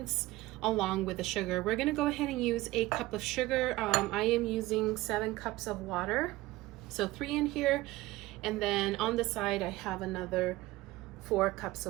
along with the sugar. We're going to go ahead and use 1 cup of sugar. I am using 7 cups of water, so 3 in here, and then on the side I have another 4 cups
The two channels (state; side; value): quieter; left; 18.4 dB